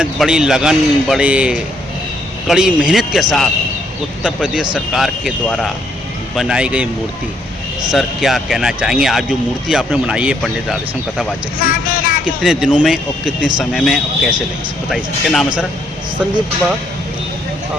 बड़ी लगन, बड़े कड़ी मेहनत के साथ उत्तर प्रदेश सरकार के द्वारा बनाई गई मूर्ति, सर क्या कहना चाहेंगे? आज जो मूर्ति आपने बनाई है पंडित राधेश्याम कथावाचक की, कितने दिनों में और कितने समय में और कैसे लगे, बताइए सर। क्या नाम है सर? संदीप कुमार।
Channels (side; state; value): both; normal; correlation 0.71